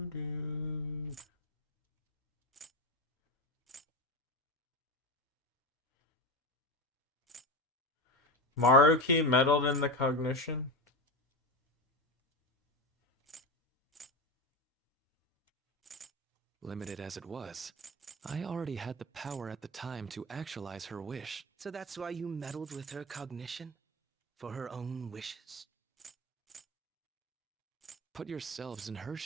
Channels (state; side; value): normal; both; correlation 0.20